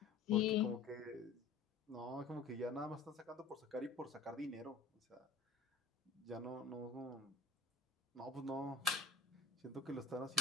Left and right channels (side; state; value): right; quieter; 4.7 dB